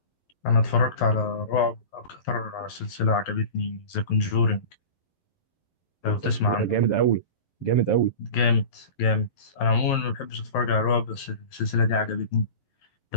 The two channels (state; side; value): late; right; 11 ms